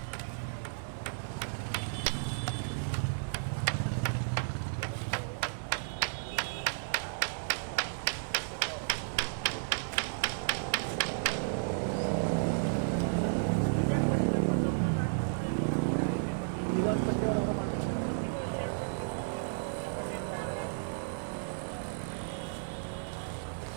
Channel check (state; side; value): silent; left; digital silence